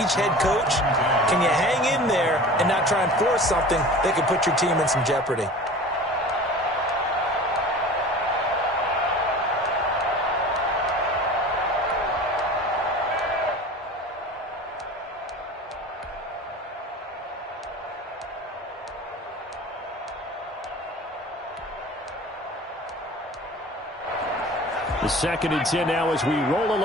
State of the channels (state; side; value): normal; both; correlation 0.39